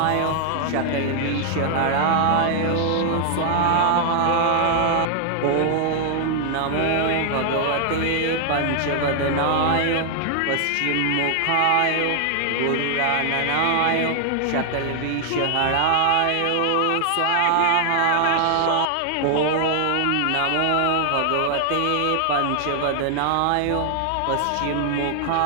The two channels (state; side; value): different; both; correlation 0.00